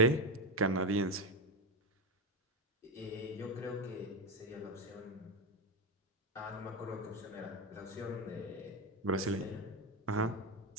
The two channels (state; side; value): normal; both; correlation 0.12